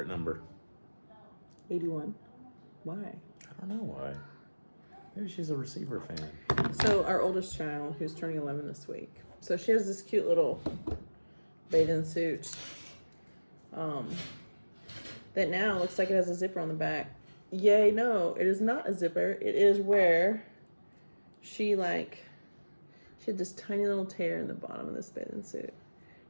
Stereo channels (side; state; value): both; inverted; correlation -1.00